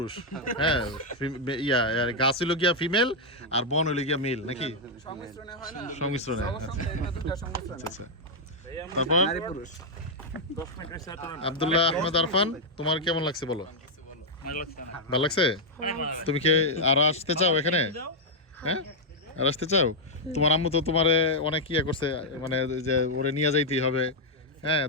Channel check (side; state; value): both; normal; correlation -0.03